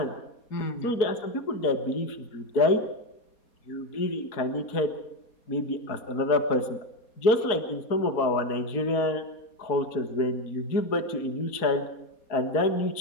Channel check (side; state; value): right; late; 4.6 ms